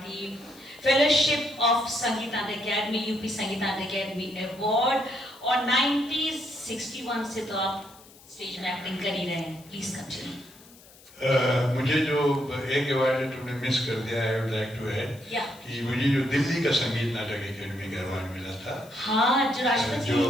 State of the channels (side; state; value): left; noise; hiss, 24 dB below the sound